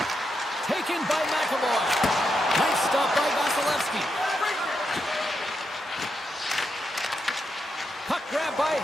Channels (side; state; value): both; normal; correlation 0.84